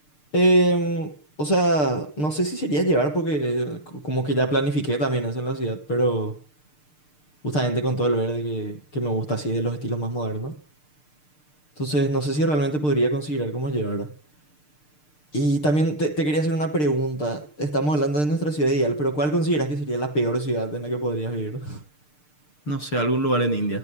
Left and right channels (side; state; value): right; late; 6.7 ms